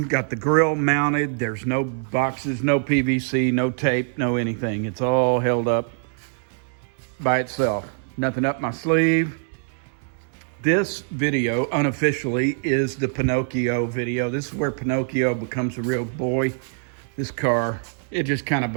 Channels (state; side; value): silent; left; digital silence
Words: got the grill mounted. There's no boxes, no PVC, no tape, no anything. It's all held up by itself. Nothing up my sleeve. This video, unofficially, is the Pinocchio video. This is where Pinocchio becomes a real boy. This car, it just kind of